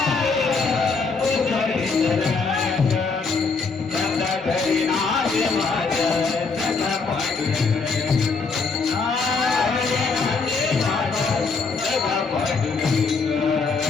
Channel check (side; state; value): right; quieter; 4.5 dB